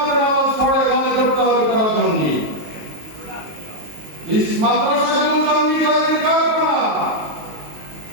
নামাজ পড়ে মনে করতে হবে তারা জঙ্গি। এই মাদ্রাসাগুলো জঙ্গি তৈরির কারখানা।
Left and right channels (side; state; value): left; late; 19 ms